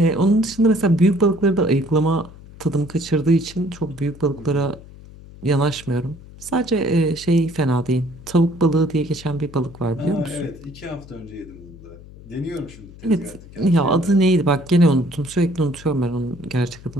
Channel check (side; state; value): left; noise; hum, 19 dB below the sound